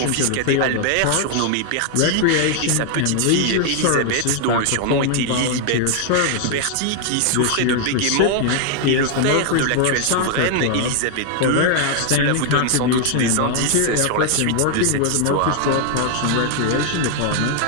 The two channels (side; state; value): both; different; correlation 0.00